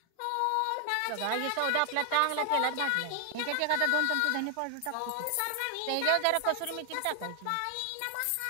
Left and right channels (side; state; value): both; different; correlation 0.00